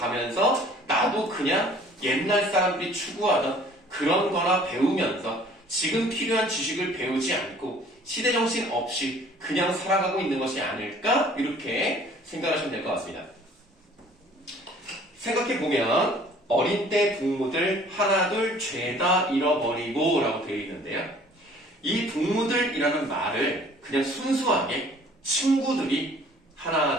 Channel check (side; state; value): both; normal; correlation 0.53